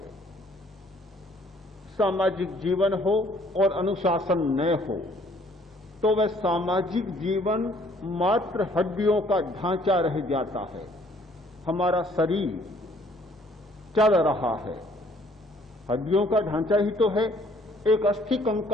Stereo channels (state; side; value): normal; both; correlation 0.60